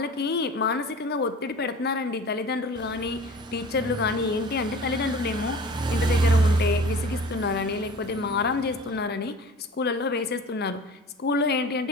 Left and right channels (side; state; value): both; normal; correlation 0.41